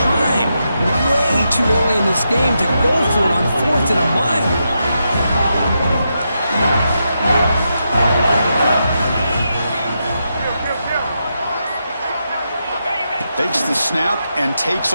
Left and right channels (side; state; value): both; inverted; correlation -0.85